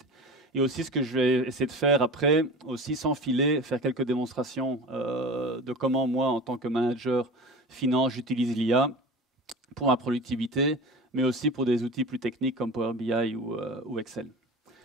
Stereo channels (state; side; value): normal; both; correlation 0.33